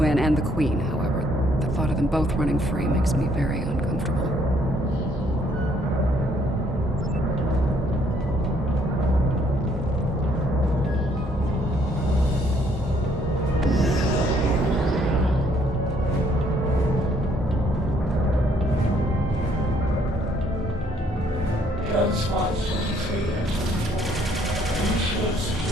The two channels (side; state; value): both; normal; correlation 0.66